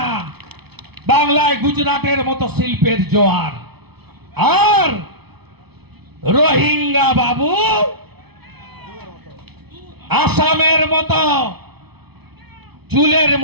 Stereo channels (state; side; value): late; left; 0.98 ms